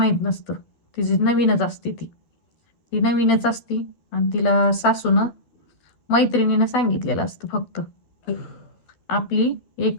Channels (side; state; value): right; late; 12 ms